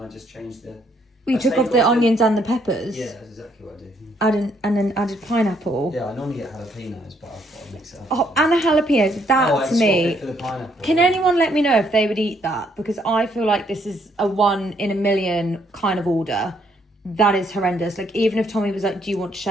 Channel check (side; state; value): both; normal; correlation 0.70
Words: just changed the... We took off the onions and the peppers. Yeah, that's exactly what I did. And then added pineapple. Yeah, I normally get jalapenos, but I've got to mix it up. Oh, and a jalapeno. That to me. For the pineapple. Can anyone let me know if they would eat that? Because I feel like this is a 1 in a million kind of order. That is horrendous. Like, even if Tommy was like, do you want to